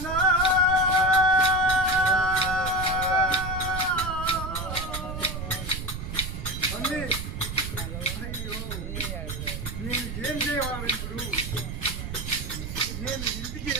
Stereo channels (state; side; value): noise; right; rumble, 6 dB below the sound